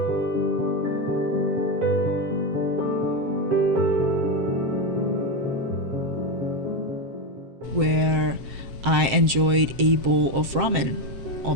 Where I enjoyed a bowl of ramen all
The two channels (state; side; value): late; left; 7.4 ms